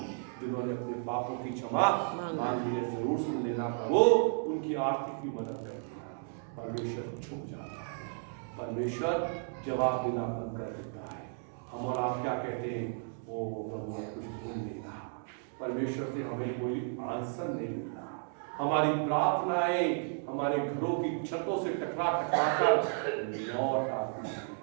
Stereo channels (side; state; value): left; silent; 55 dB below the other